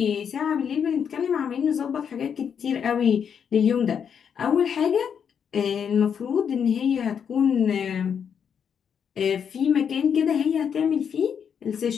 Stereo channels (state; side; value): quieter; right; 7.5 dB